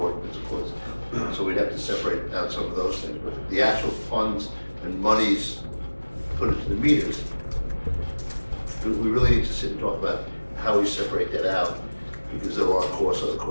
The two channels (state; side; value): inverted; both; correlation -1.00